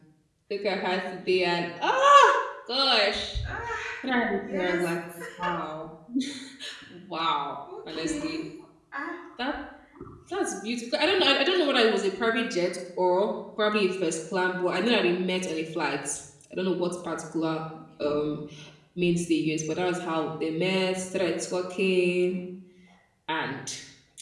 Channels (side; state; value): both; identical; correlation 1.00